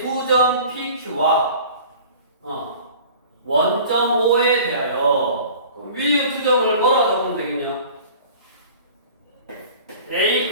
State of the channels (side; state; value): both; inverted; correlation -0.44